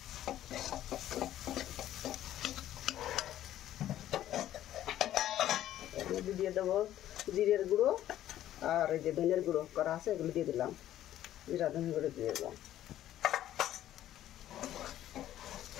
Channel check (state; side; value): quieter; right; 12.6 dB